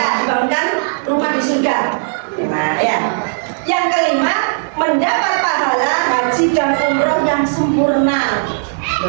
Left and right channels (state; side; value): silent; left; digital silence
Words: Dibangunkan rumah di surga. Enak, ya. Yang kelima, mendapat pahala haji dan umroh yang sempurna.